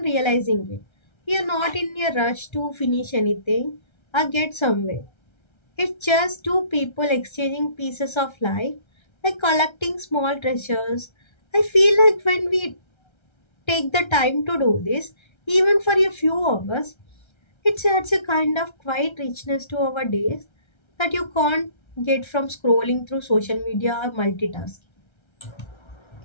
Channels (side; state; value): right; late; 1.3 ms